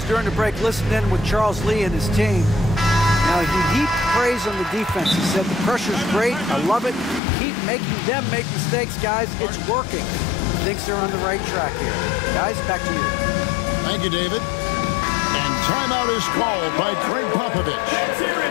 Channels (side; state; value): right; drops out; at 7.2 s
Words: during the break, listen in with Charles Lee and his team. Now, he heaped praise on the defense. He said, the pressure's great. I love it. Keep making them make mistakes, guys. It's working. Thinks they're on the right track here. Guys, back to you. Thank you, David. And timeout is called by Greg Popovich.